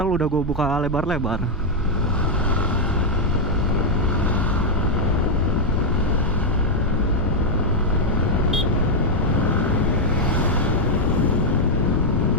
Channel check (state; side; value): normal; both; correlation -0.01